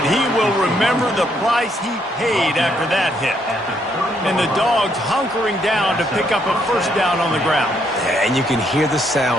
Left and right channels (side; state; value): both; normal; correlation 0.72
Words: he will remember the price he paid after that hit. And the Dogs hunkering down to pick up a first down on the ground. Yeah, and you can hear the